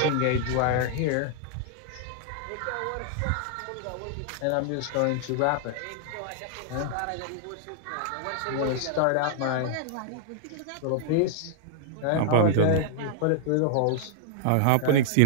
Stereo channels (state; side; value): different; both; correlation -0.01